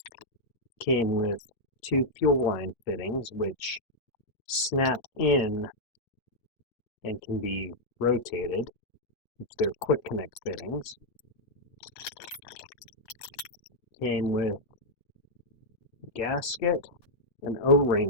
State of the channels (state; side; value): late; right; 9.7 ms